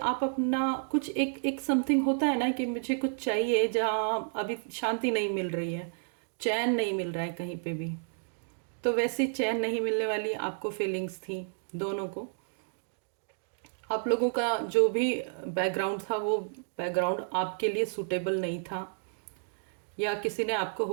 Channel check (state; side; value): silent; left; digital silence